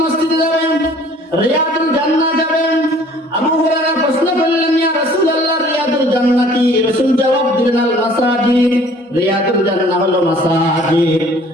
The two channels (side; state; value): both; normal; correlation 0.53